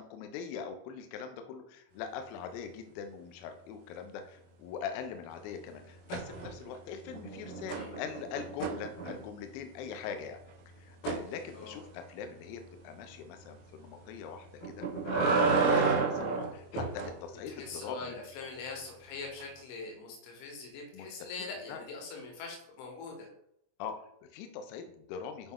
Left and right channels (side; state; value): right; late; 23 ms